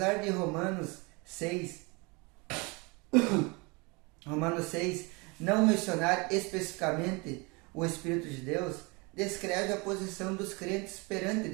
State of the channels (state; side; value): quieter; left; 28.0 dB